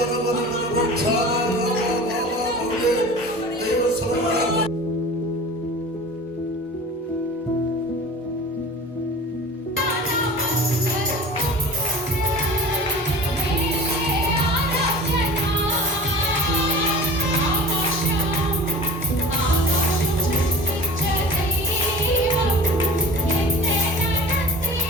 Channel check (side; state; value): both; normal; correlation 0.39